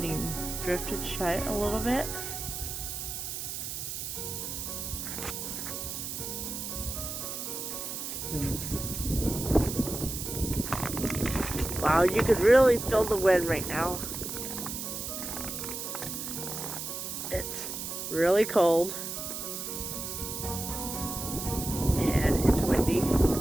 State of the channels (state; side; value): noise; right; hiss, 5 dB below the sound